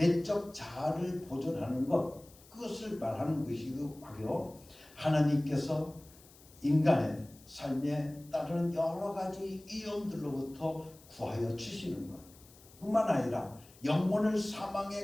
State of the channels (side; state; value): left; noise; hiss, 24 dB below the sound